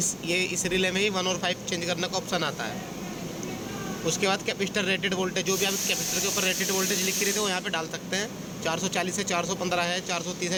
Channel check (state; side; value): identical; both; correlation 1.00